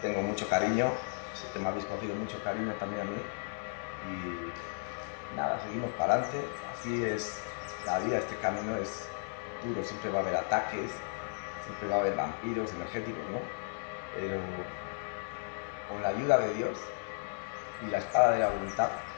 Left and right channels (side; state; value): right; silent; 55 dB below the other